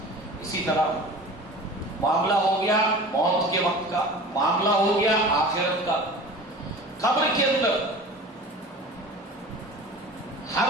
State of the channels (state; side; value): normal; both; correlation 0.38